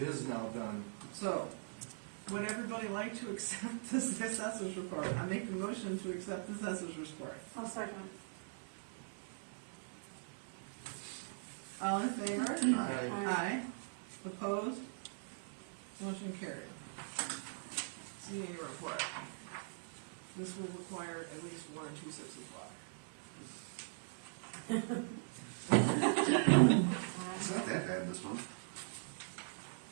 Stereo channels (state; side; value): silent; left; digital silence